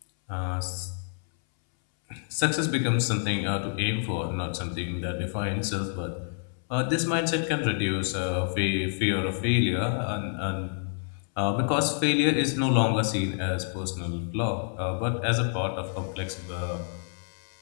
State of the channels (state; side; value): silent; right; 59 dB below the other